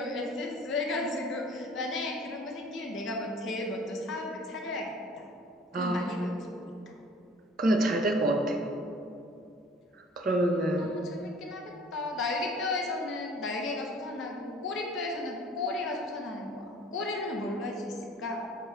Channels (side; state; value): both; normal; correlation 0.50